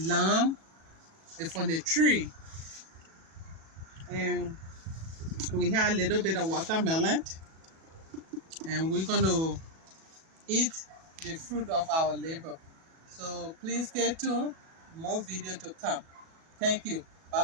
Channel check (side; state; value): left; late; 37 ms